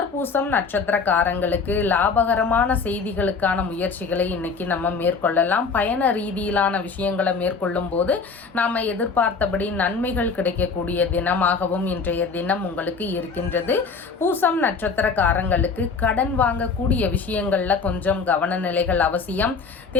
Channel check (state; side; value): quieter; right; 5.0 dB